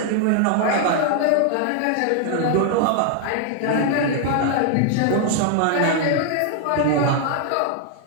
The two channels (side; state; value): both; different; correlation 0.00